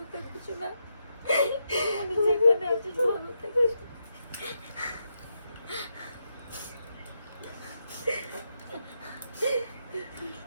থাকিস না, যেখানে আছিস ভালো থাকিস।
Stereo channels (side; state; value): both; inverted; correlation -0.83